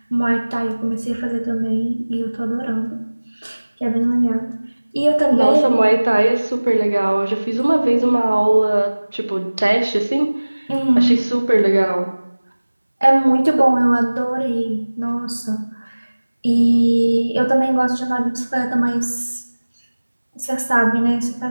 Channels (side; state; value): both; inverted; correlation -1.00